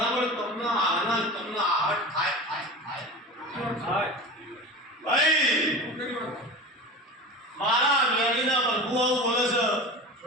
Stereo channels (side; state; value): both; normal; correlation 0.31